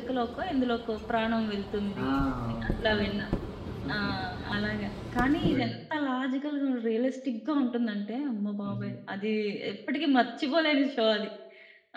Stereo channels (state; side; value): identical; both; correlation 1.00